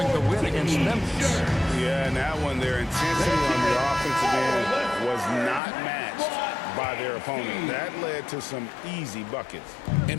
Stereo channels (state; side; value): drops out; right; at 5.6 s